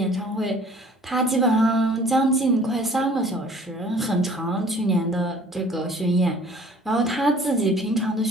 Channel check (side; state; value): both; normal; correlation 0.52